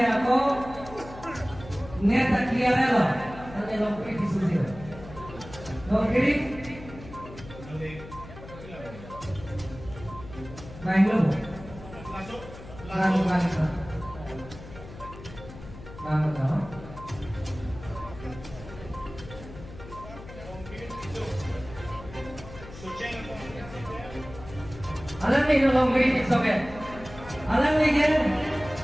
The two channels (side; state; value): left; noise; hum, 15 dB below the sound